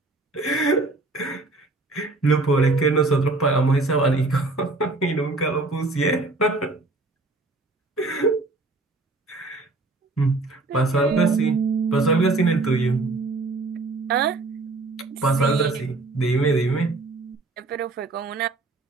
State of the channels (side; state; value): left; quieter; 3.3 dB